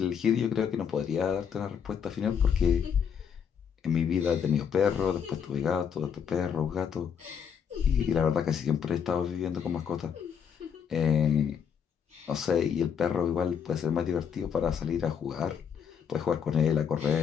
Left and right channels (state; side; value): quieter; right; 7.5 dB